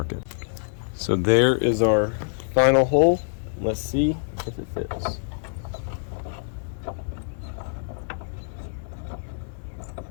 it. So there is our final hole. Let's see if it fits.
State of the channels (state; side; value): silent; right; 61 dB below the other